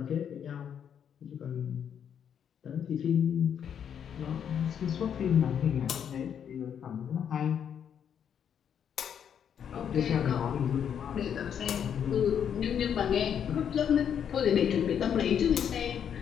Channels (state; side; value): quieter; right; 8.4 dB